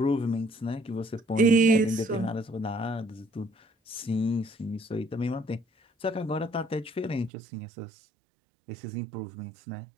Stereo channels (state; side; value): drops out; left; at 7.3 s